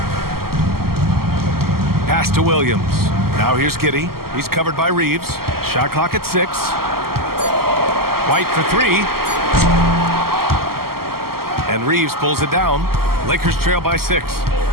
Pass to Williams. Now here's Giddey. He's covered by Reeves. Shot clock at 6. White for 3. And Reeves pulls it down. Lakers trail by 6.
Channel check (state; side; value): late; left; 0.93 ms